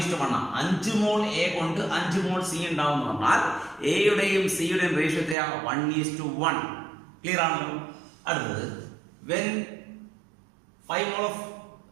ആണ്. 5 മോൾ A കൊണ്ട് 5 മോൾ C ഉണ്ടാവും എന്ന് പറഞ്ഞാൽ എയുടെയും സിയുടെയും റേഷ്യോ 1:1. ക്ലിയർ ആണല്ലോ? അടുത്തത് when 5 mole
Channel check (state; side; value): drops out; left; at 5.4 s